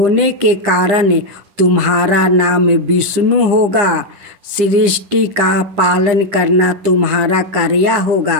के कारण तुम्हारा नाम विष्णु होगा। सृष्टि का पालन करना तुम्हारा कार्य होगा।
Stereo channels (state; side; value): late; left; 10 ms